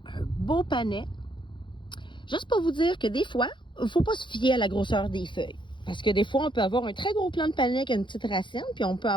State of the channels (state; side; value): late; right; 0.23 ms